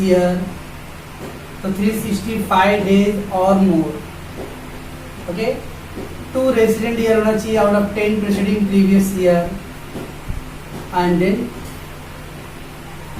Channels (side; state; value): both; identical; correlation 1.00